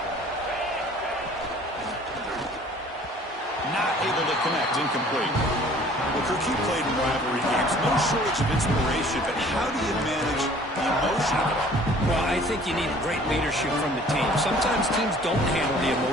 Not able to connect, incomplete. Well, Kirk, you played in rivalry games. No shortage of inspiration, but how do you manage the emotion of it all? Well, I think you need great leadership from the team. Sometimes teams don't handle the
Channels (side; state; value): both; normal; correlation 0.52